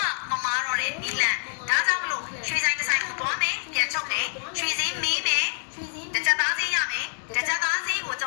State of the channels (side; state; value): right; silent; 61 dB below the other